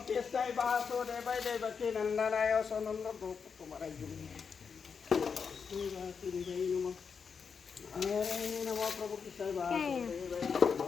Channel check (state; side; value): quieter; right; 6.0 dB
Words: কৃষ্ণাই বাসুদেৱাই দেৱকী নন্দনায় সনন্দ গোপকুমাৰাই বাসুদেৱাই নমঃ নাৰায়ণায় নমঃ প্ৰভু কৃষ্ণায় বাসুদেৱাই